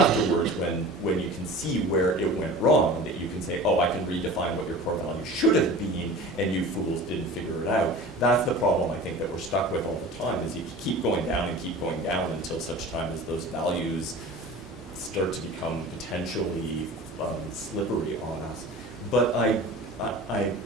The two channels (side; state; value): both; normal; correlation 0.38